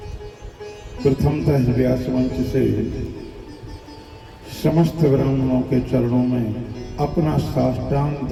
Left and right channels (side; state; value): both; identical; correlation 1.00